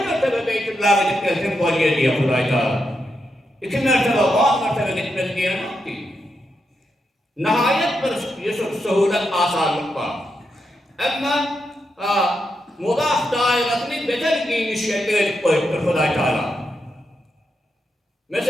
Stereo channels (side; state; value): both; normal; correlation 0.84